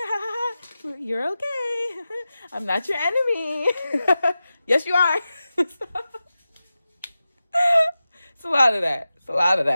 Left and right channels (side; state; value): both; inverted; correlation -0.94